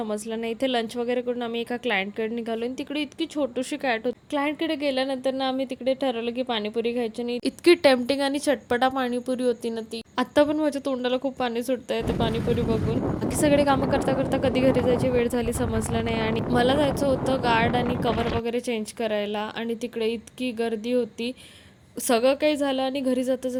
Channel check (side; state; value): both; identical; correlation 1.00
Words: नाही. इथे लंच वगैरे करून आम्ही एका क्लायंटकडे निघालो आणि तिकडे इतकी छोटीशी कॅट होती. क्लायंटकडे गेल्यानंतर ना आम्ही तिकडे ठरवलं की पाणीपुरी खायची. आणि इतकी टेम्पटिंग आणि चटपटा पाणीपुरी होती ना ती. आता पण माझ्या तोंडाला खूप पाणी सुटतंय ते पाणीपुरी बघून. बाकी सगळे कामं करता करता कधी घरी जायची वेळ झाली समजलं नाही. आणि मला जायचं होतं गार्ड आणि कवर वगैरे चेंज करायला, आणि तिकडे इतकी गर्दी होती. सगळं काही झालं आणि घरी जाता